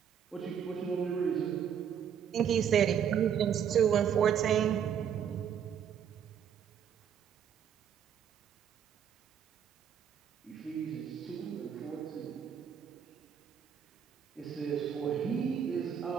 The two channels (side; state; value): left; quieter; 8.4 dB